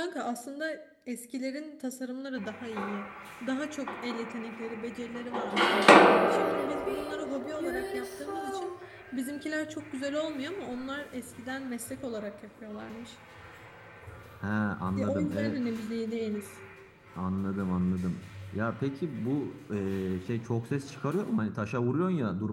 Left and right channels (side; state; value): both; identical; correlation 1.00